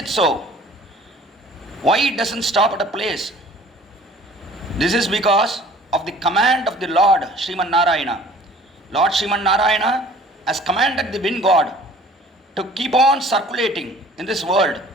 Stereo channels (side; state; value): both; normal; correlation 0.50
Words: it so? Why it doesn't stop at a place? This is because of the command of the Lord Sriman Narayana. Lord Sriman Narayana has commanded the wind god to keep on circulating in this world.